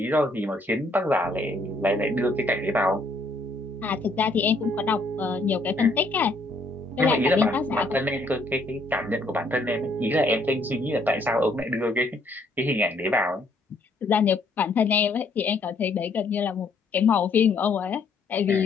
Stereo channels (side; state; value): right; quieter; 3.0 dB